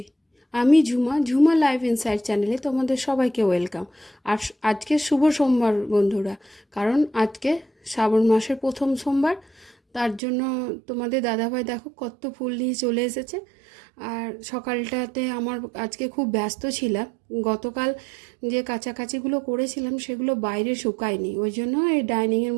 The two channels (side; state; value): left; drops out; at 10.2 s